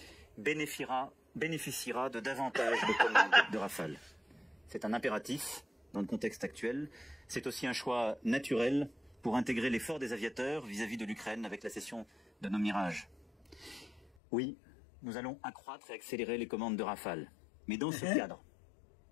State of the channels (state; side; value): drops out; right; at 14.0 s